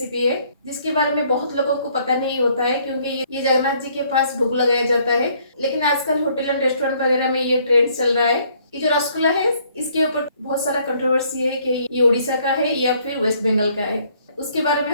है जिसके बारे में बहुत लोगों को पता नहीं होता है, क्योंकि ये जगन्नाथ जी के पास भोग लगाया जाता है। लेकिन आजकल होटल एंड रेस्टोरेंट वगैरह में ये ट्रेंड चल रहा है। ये जो रसगुल्ला है, इसके ऊपर बहुत सारा कंट्रोवर्सी है कि ये उड़ीसा का है या फिर वेस्ट बंगाल का है। उसके बारे में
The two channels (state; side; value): inverted; both; correlation -0.64